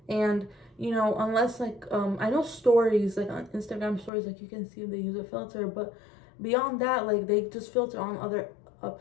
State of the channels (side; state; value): right; drops out; at 4.1 s